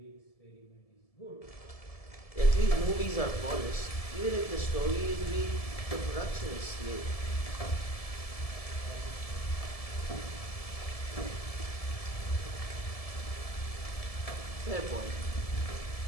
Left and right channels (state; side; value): late; right; 1.7 ms